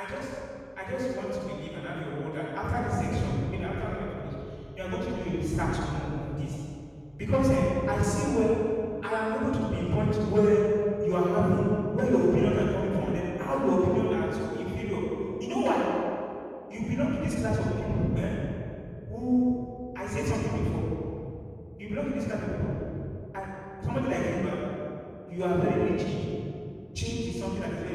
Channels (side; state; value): both; identical; correlation 1.00